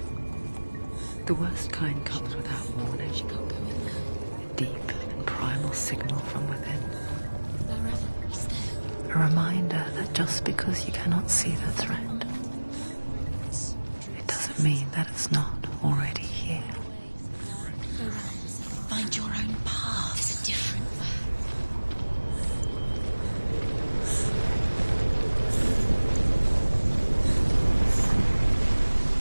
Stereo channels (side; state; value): both; inverted; correlation -1.00